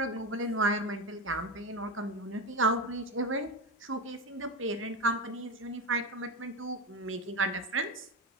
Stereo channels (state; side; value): normal; both; correlation 0.17